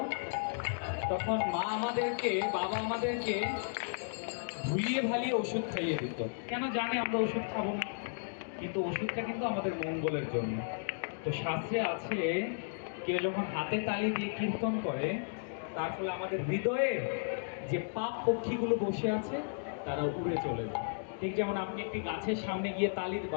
তখন মা আমাদেরকে বাবা আমাদেরকে ভুলিয়ে ভালিয়ে ওষুধ খাইয়ে দিত। কেন জানে আমরা ওষুধ খাবো না, কিন্তু ওষুধটা কিন্তু আমাদের মঙ্গলের জন্য। তো শাস্ত্রে আছে কেউ যখন হাতে তালি দিয়ে কীর্তন করে তার ফলে আমাদের হৃদয়ের যে পাপ পক্ষীগুলো বসে আছে তারা উড়ে চলে যায়। ঠিক যেমন আপনি একটি গাছের সামনে গিয়ে তালি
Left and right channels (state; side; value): silent; right; digital silence